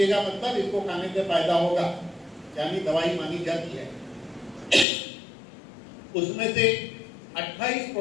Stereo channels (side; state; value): right; drops out; at 4.9 s